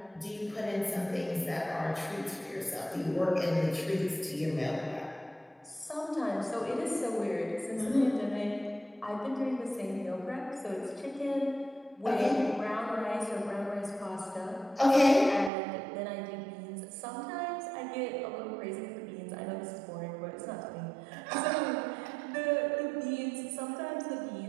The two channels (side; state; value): left; drops out; at 15.5 s